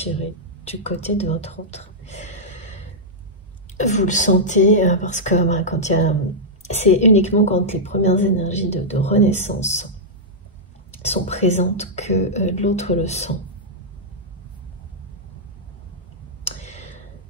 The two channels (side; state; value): both; normal; correlation -0.09